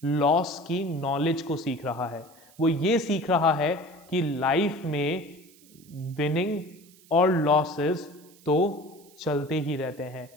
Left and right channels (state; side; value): noise; right; hiss, 26 dB below the sound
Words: लॉस की नॉलेज को सीख रहा है। वो ये सीख रहा है कि लाइफ में विनिंग और लॉसेस तो चलते ही रहते हैं।